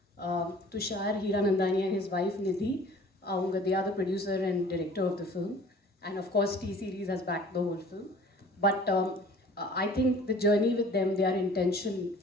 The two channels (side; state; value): both; normal; correlation 0.49